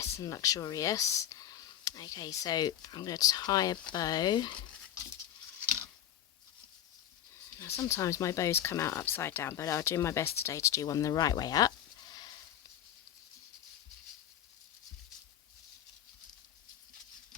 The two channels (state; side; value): quieter; right; 11.0 dB